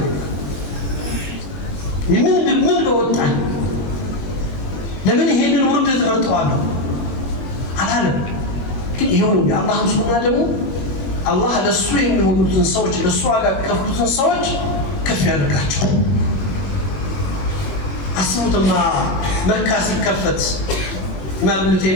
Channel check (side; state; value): right; late; 22 ms